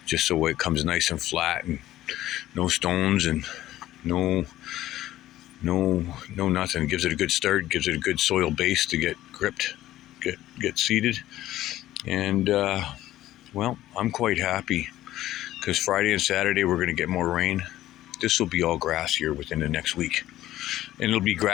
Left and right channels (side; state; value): right; quieter; 14.4 dB